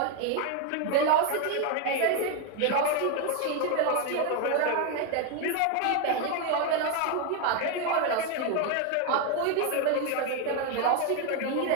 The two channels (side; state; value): both; different; correlation 0.01